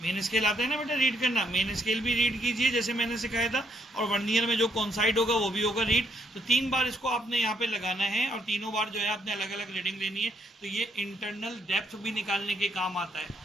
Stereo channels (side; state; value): both; normal; correlation 0.72